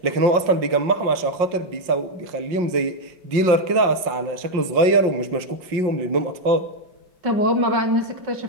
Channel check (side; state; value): left; late; 5.6 ms